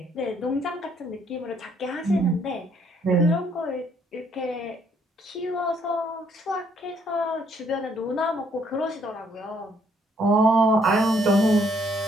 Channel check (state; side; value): normal; both; correlation 0.67